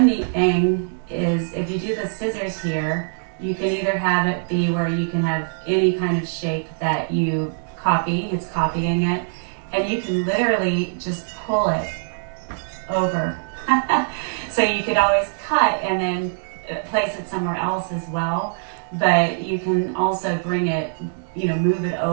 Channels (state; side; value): silent; left; digital silence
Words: neat thing is if you do the scissors here, you can either have it be where you can have any kind of shape that you copy, it's copying it, and you can literally just pull it over. So you could always cut and then place it somewhere else as well, but you can also bring it, move it